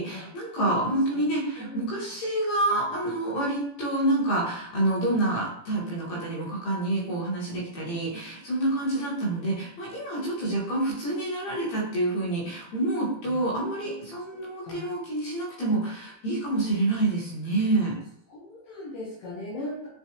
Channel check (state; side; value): late; right; 18 ms